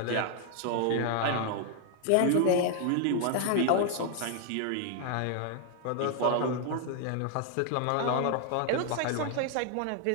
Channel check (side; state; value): both; different; correlation 0.00